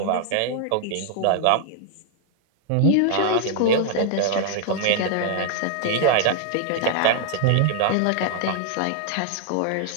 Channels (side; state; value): both; different; correlation 0.00